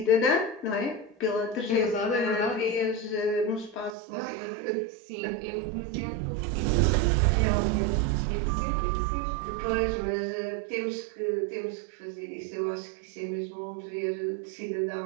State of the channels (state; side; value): drops out; left; at 4.0 s